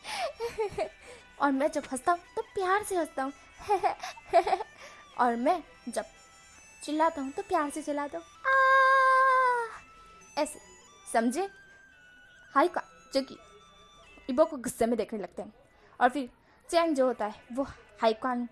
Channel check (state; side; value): identical; both; correlation 1.00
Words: और मैं जब हंसता हूँ तो प्यार से हंसता हूँ और मैं जब चिल्लाता हूँ तो प्यार से चिल्लाता हूँ, ऐसे, समझे। हाईक्वान जो कि इबो को गुस्से में देखने लगते हैं। और फिर चैंग जो होता है वो हाईक्वान